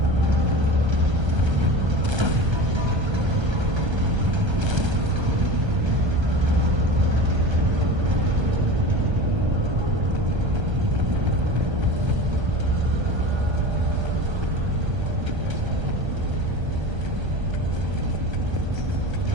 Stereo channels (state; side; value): late; left; 1.3 ms